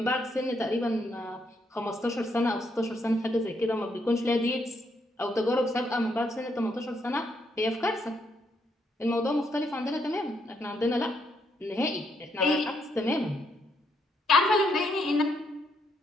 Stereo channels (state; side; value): normal; both; correlation 0.75